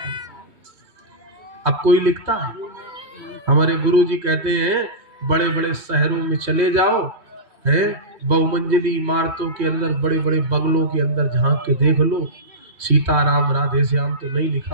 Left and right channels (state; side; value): late; left; 3.1 ms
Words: अब कोई लिखता है? हमारे गुरुजी कहते हैं, बड़े बड़े शहरों में चले जाओ, है बहुमंजिली इमारतों के अंदर, बड़े बड़े बंगलों के अंदर झांक के देख लो, सीताराम राधे श्याम तो नहीं